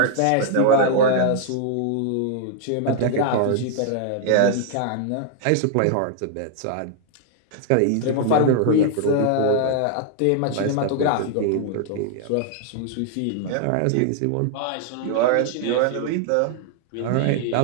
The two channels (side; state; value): both; different; correlation 0.00